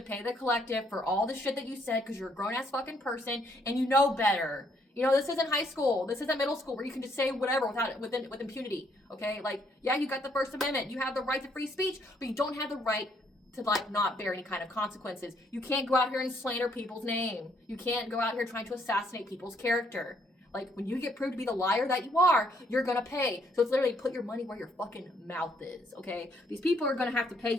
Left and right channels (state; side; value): normal; both; correlation 0.70